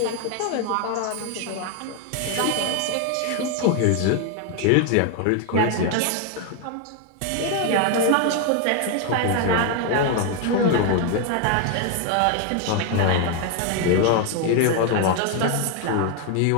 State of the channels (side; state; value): both; different; correlation 0.01